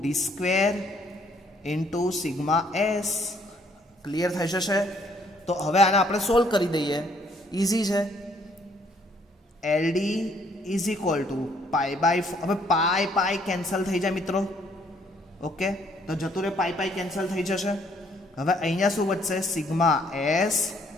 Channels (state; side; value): normal; both; correlation 0.65